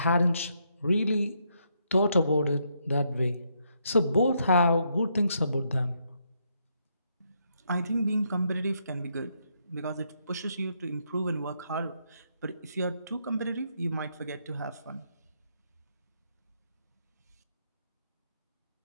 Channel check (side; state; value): both; inverted; correlation -0.76